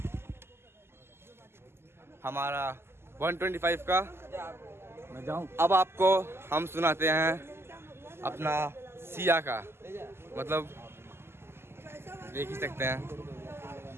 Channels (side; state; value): left; late; 0.12 ms